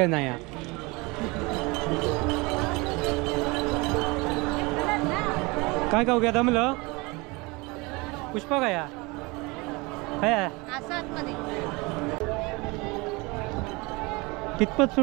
नाही काय खाऊ घ्या दमलं पुष्पा काय काय कितपत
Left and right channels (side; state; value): left; quieter; 25.4 dB